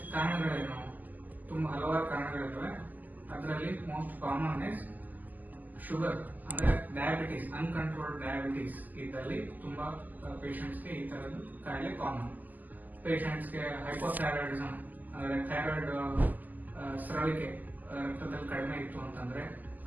ಕಾರಣಗಳೇನು? ತುಂಬಾ ಹಲವಾರು ಕಾರಣಗಳಿರ್ತವೆ. ಅದರಲ್ಲಿ ಮೋಸ್ಟ್ ಕಾಮನ್ ಇಸ್ ಶುಗರ್, ಅಂದ್ರೆ ಡಯಾಬಿಟೀಸ್, ಅನ್ಕಂಟ್ರೋಲ್ಡ್ ಡಯಾಬಿಟೀಸ್ ಇದ್ದಲ್ಲಿ ತುಂಬಾ ಪೇಷಂಟ್ಸ್ಗೆ ಈ ತರದ ಕಾಯಿಲೆ ಕಾಮನ್. ಪೇಷಂಟ್ಸ್ಗೆ ಹೈಪೋಥೈರಾಯ್ಡಿಸಮ್ ಅಂದ್ರೆ ಥೈರಾಯ್ಡ್ ಸ್ರವಿಕೆ ರಕ್ತದಲ್ಲಿ ಕಡಿಮೆ ಇತ್ತು ಅಂತಂದ್ರೆ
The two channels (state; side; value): late; left; 0.083 ms